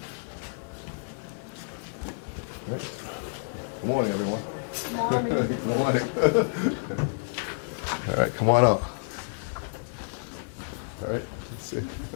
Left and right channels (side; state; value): right; silent; digital silence